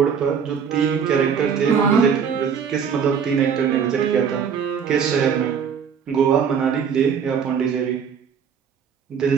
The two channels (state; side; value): quieter; left; 7.0 dB